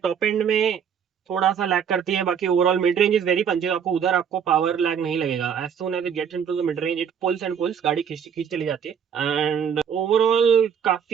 एंड में थोड़ा सा लैग करती है, बाकी overall mid range is very punchy, आपको उधर आपको पावर लैग नहीं लगेगा। As soon as it gets into the mid range, it pulls and pulls, गाड़ी खींच खींच चली जाती है। एंड ओवरऑल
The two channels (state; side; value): quieter; left; 7.7 dB